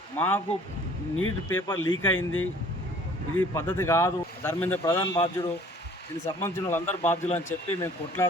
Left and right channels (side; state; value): both; normal; correlation 0.53